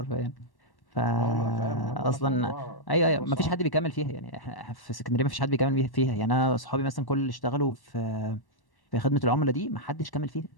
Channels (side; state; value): right; late; 1.1 ms